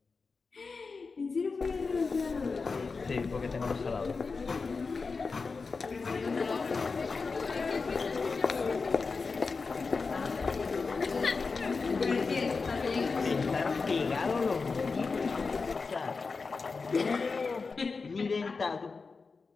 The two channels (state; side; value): quieter; right; 4.5 dB